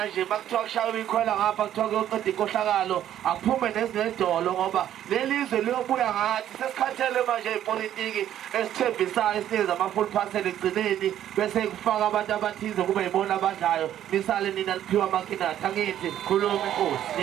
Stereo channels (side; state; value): left; quieter; 11.3 dB